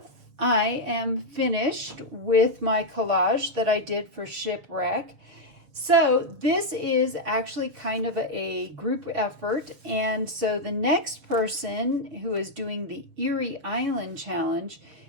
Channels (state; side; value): late; left; 6.5 ms